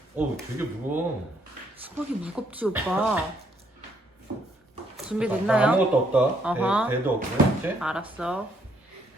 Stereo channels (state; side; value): normal; both; correlation 0.70